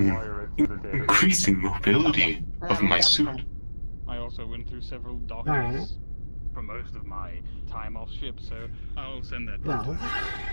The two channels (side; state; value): both; inverted; correlation -1.00